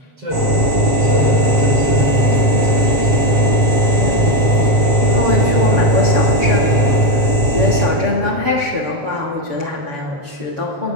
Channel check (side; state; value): left; late; 6.9 ms